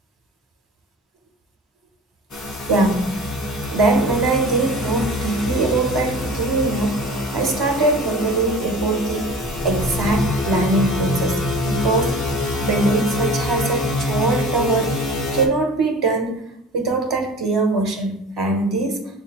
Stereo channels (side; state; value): both; normal; correlation 0.40